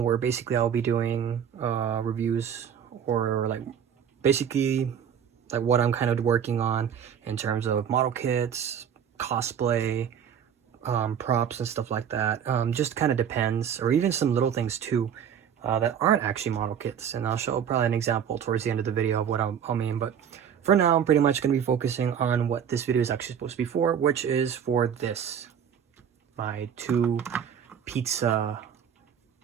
basically I'll be doing reviews or basically what I'm kind of working on in terms of model kits, cosplay, props and stuff like that. Just kind of depends, or even some little things too that aren't actually model kits, and I'll show probably an example towards the end of the video of what I'll mean. But for now, I'm pretty much going to be focusing on what this video is actually supposed to be for, which is for this, my two pizza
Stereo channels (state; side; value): quieter; left; 8.3 dB